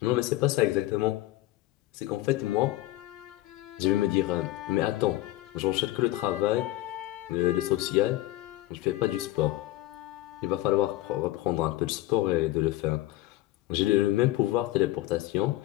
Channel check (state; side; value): quieter; right; 16.8 dB